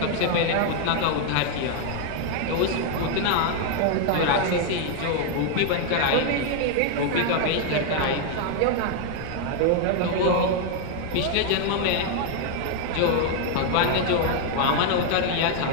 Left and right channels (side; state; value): both; different; correlation 0.00